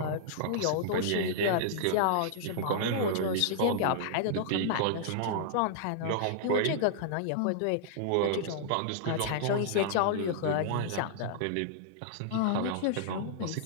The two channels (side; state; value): both; different; correlation -0.01